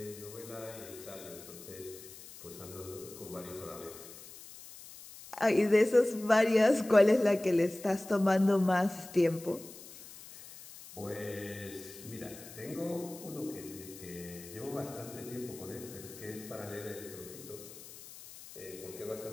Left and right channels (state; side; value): noise; left; hiss, 16 dB below the sound